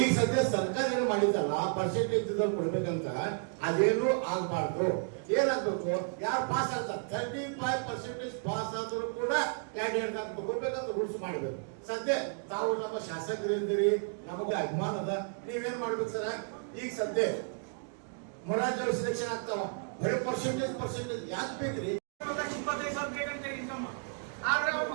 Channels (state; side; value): silent; left; 56 dB below the other